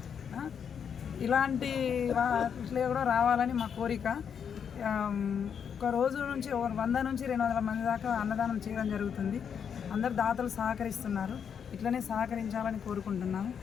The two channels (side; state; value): right; quieter; 7.4 dB